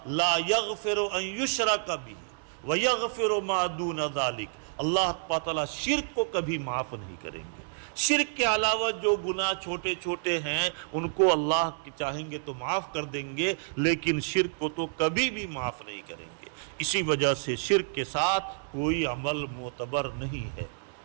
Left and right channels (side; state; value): left; silent; digital silence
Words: لا یغفر ان یشرک بہ ویغفر ما دون ذلک، اللہ تعالیٰ شرک کو کبھی معاف نہیں کریں گے۔ شرک کے علاوہ جو گناہ چھوٹے چھوٹے ہیں ان کو اللہ چاہیں گے تو معاف کر دیں گے، لیکن شرک کو تو کبھی بھی معاف نہیں کریں گے۔ اسی وجہ سے شرک کے ساتھ کوئی عمل معتبر نہیں ہے۔